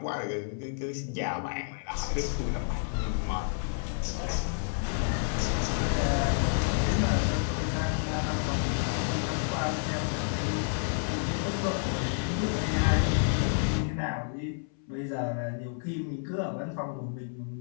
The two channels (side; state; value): right; silent; 58 dB below the other